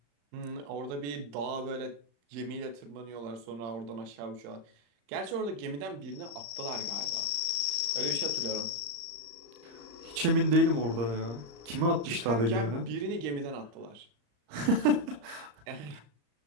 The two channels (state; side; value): late; left; 34 ms